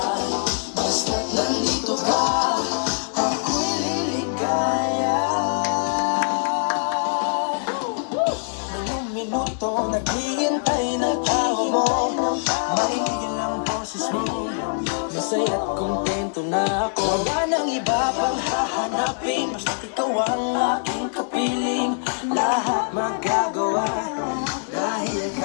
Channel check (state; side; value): silent; right; digital silence